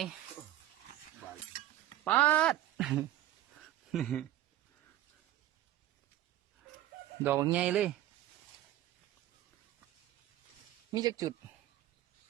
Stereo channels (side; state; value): left; quieter; 14.0 dB